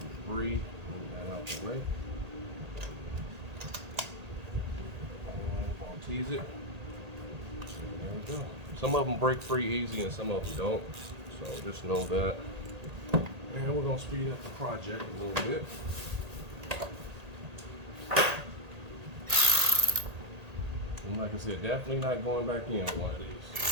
debris, move that out the way. Tease it. There we go. Some of them break free easy and some of them don't. So just know that. And we're going to speed up the project a little bit. And like I said, definitely not going back in on one of these.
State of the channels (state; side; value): late; left; 1.8 ms